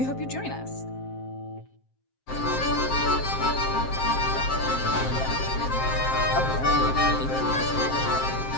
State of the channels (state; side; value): late; right; 7.6 ms